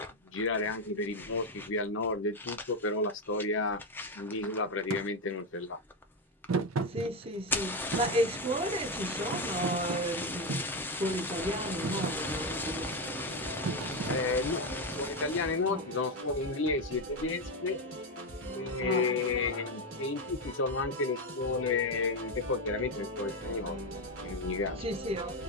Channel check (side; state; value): both; normal; correlation 0.10